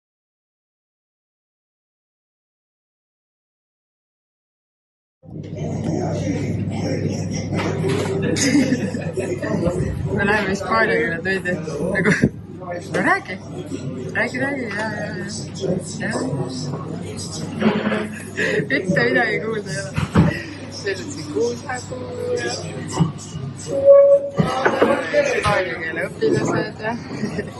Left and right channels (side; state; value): both; identical; correlation 1.00